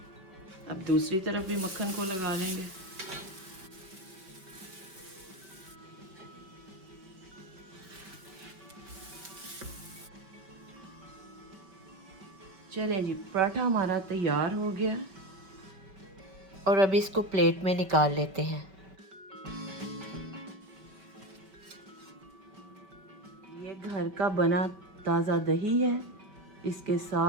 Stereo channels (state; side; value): late; left; 5.4 ms